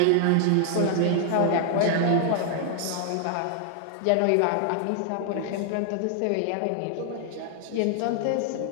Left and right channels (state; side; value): different; both; correlation 0.00